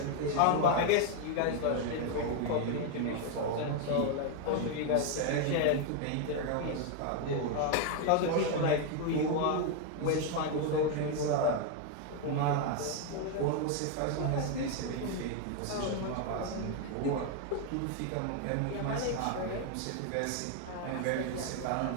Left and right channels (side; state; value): both; different; correlation 0.01